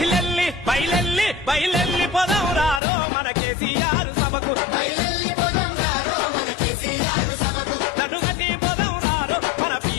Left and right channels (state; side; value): drops out; right; at 2.8 s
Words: బయలెల్లి బయలెల్లి పొదవురారో మన కేసీఆర్ సభకు